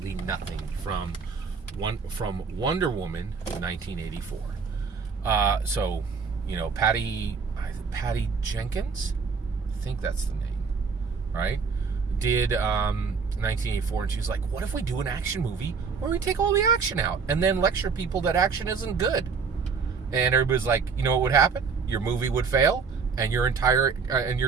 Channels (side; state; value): left; quieter; 5.3 dB